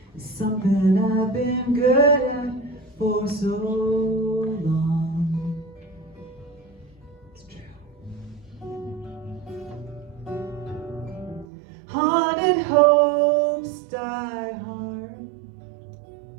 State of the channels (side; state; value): left; drops out; at 11.5 s